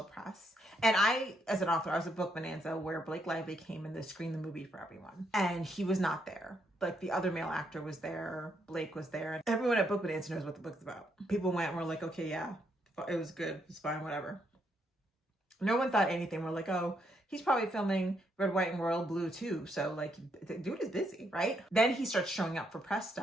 press. And I, as an author, I was at Book Bonanza where Blake Lively came in to screen the movie for everyone. And he was not there. Like the other male actor was there. Blake was there. And everyone at Book Bonanza knows what the book's about. People went and were like, okay, yeah, it was good. It's fine, whatever. No one thought anything. We're like, oh, he's probably filming Red, White, and Royal Blue too. So like, the dude is busy, right? Then he starts showing up for press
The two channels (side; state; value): both; normal; correlation 0.76